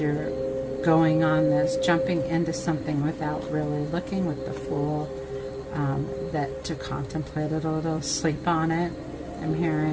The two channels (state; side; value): identical; both; correlation 1.00